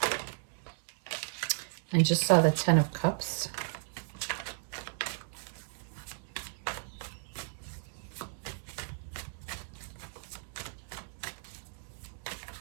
I just saw the 10 of Cups.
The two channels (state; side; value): silent; left; digital silence